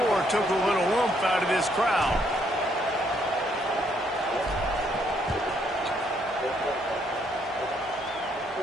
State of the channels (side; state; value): both; normal; correlation 0.71